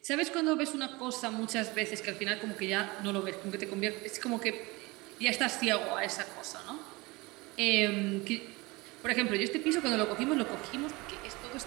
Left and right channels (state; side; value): quieter; left; 23.6 dB